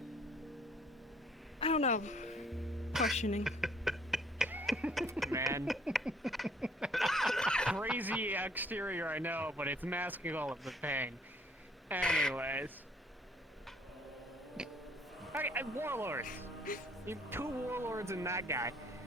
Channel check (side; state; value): both; normal; correlation 0.61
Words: I don't know. Questioning. Man. Crazy exterior, I know, but it's masking all of the pain. Anyways. Okay, warlords. You have 2 warlords and that guy.